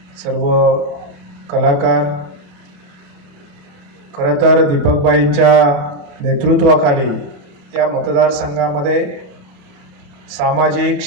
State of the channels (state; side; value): late; left; 28 ms